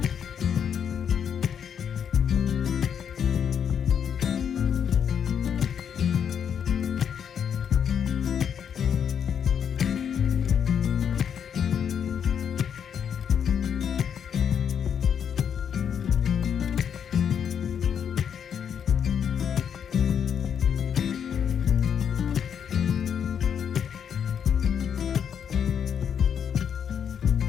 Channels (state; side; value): quieter; right; 8.0 dB